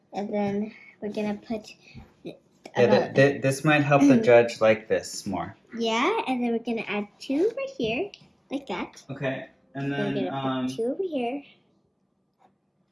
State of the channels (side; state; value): both; identical; correlation 1.00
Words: and then we're gonna put. This might help the judge like this more. Yeah, and then we're gonna add 2 right here, like that. Okay, and then we're gonna put 2 over here,